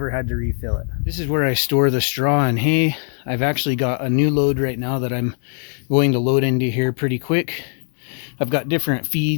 had to refill it. This is where I store the straw and hay. I've actually got a new load right now that I'm going to load into here pretty quick. I've got different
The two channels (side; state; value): right; silent; 58 dB below the other